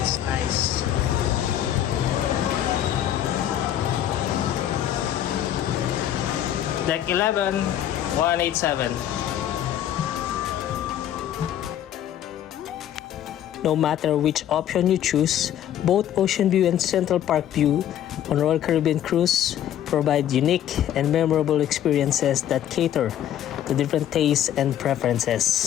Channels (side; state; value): right; quieter; 11.1 dB